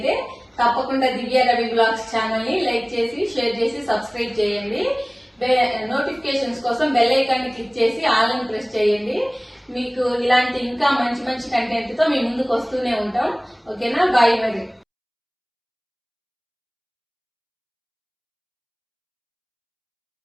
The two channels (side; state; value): both; identical; correlation 1.00